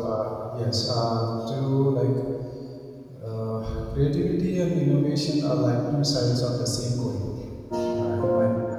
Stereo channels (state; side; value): identical; both; correlation 1.00